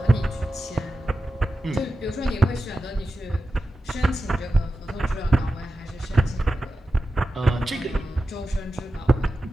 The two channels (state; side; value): normal; both; correlation 0.93